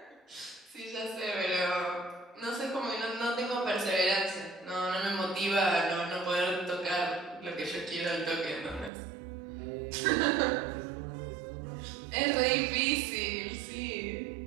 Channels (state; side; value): drops out; left; at 8.9 s